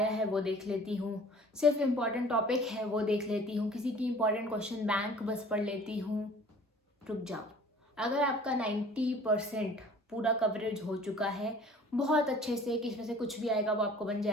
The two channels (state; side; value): normal; both; correlation 0.49